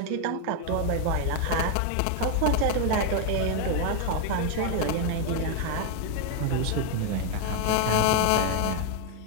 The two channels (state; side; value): different; both; correlation 0.00